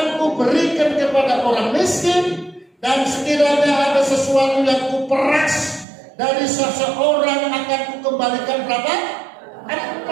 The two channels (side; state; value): left; drops out; at 5.9 s